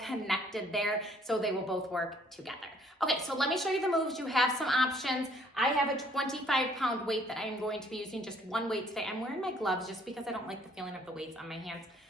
there, so they will both work together. Okay, so let me show you the moves. You have some options. I have a 25-pound weight that I am going to be using, just one weight today. I'm wearing my gloves just because I don't like the feeling of the weights on my hands.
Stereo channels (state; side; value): normal; both; correlation 0.62